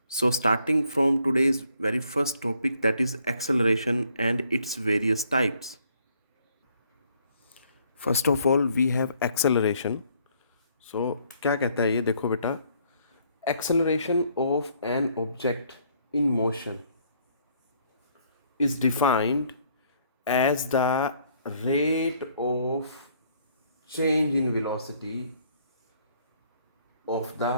So, starting from today's very first topic, that is acceleration and its various types. First of all we have acceleration. So क्या कहता है ये, देखो बेटा, acceleration of an object in motion is defined as the rate of change in velocity of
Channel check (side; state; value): both; inverted; correlation -0.66